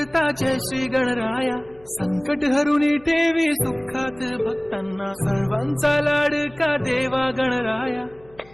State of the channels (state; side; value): noise; left; hum, 27 dB below the sound